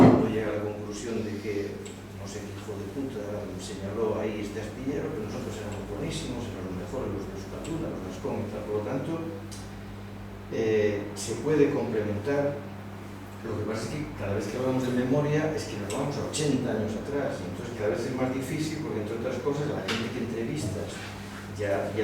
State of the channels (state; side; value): identical; both; correlation 1.00